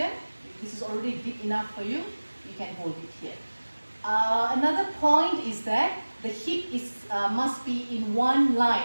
If this is already deep enough for you, you can hold it here. Another point is that the hip must be in one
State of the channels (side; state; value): both; inverted; correlation -1.00